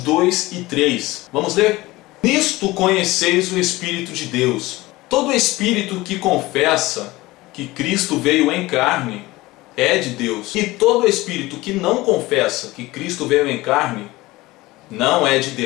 e 3. Vamos ler? Nisto conheceis o Espírito de Deus. Todo espírito que confessa que Cristo veio em carne é de Deus. E todo espírito que não confessa que Cristo veio em carne não é de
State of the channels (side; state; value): right; quieter; 19.6 dB